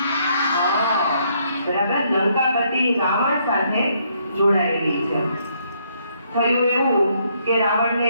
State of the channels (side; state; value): both; inverted; correlation -0.71